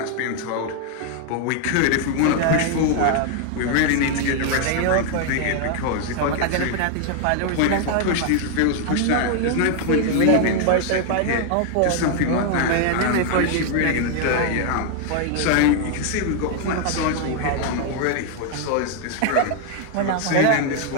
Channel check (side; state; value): both; different; correlation 0.00